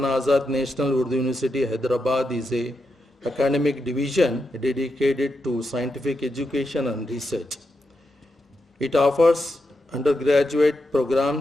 Azad National Urdu University, Hyderabad is a academic division dedicated to scientific education and research. It offers undergraduate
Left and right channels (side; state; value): both; normal; correlation 0.86